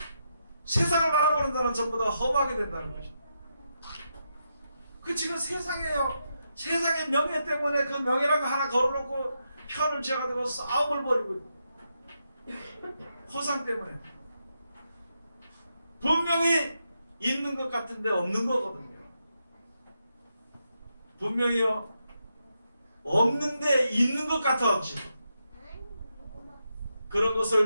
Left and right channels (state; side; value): inverted; both; correlation -0.84